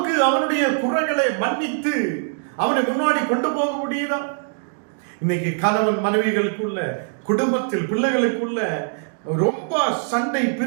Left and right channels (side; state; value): left; silent; digital silence